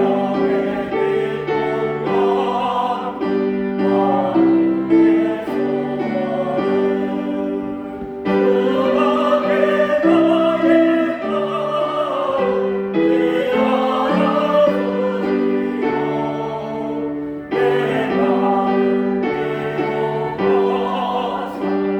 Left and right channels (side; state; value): both; identical; correlation 1.00